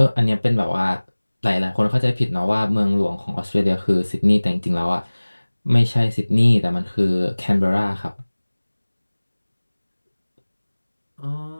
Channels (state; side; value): inverted; both; correlation -1.00